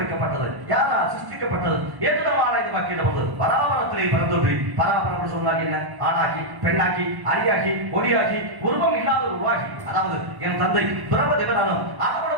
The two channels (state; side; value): late; left; 1.1 ms